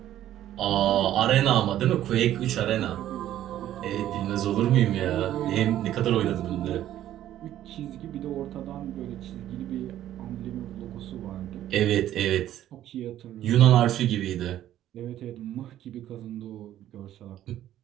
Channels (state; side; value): quieter; left; 12.4 dB